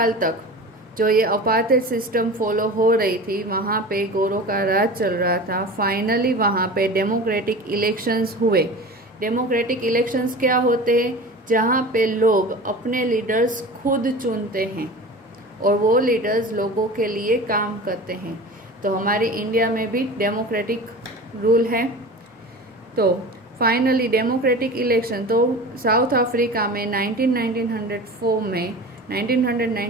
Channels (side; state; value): both; normal; correlation 0.35